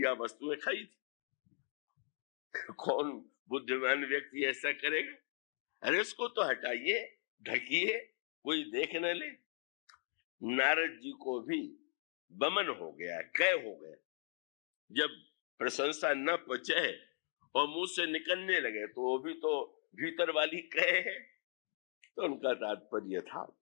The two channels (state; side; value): silent; right; 52 dB below the other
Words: वस्तुएं खाई थी। कौन बुद्धिमान व्यक्ति ऐसा करेगा। अरे इसको तो हटाइए, ढकिए, कोई देख न ले। नारद जी को भी बमन हो गया, कै हो गया। जब प्रशंसा न पचे और मुंह से निकलने लगे तो वो भी तो भीतर वाली कै है। तो उनका तात्पर्य था,